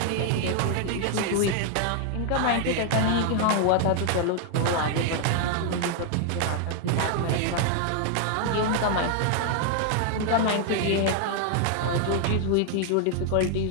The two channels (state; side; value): different; both; correlation 0.00